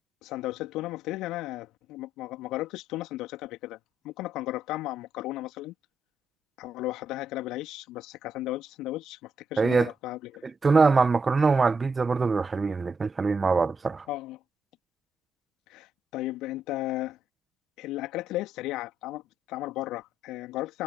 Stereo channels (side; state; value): both; normal; correlation 0.79